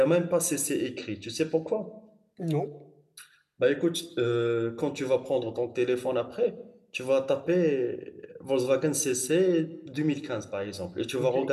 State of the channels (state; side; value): identical; both; correlation 1.00